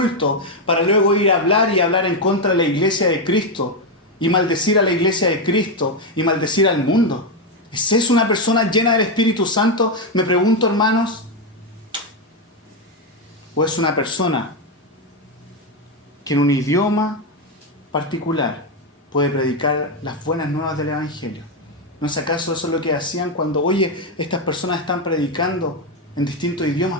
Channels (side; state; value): both; normal; correlation 0.06